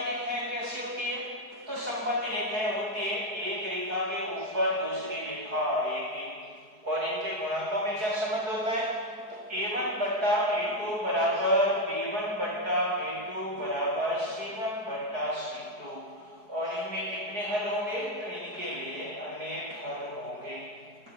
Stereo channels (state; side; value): late; left; 4.7 ms